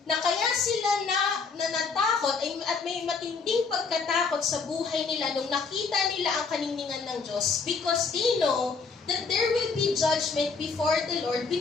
na kaya sila natakot at may matinding pagkatakot sa buhay nila nung nakita nila ang kaninningan ng Diyos, because they know that there will be judgment before the Lord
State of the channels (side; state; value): right; quieter; 4.9 dB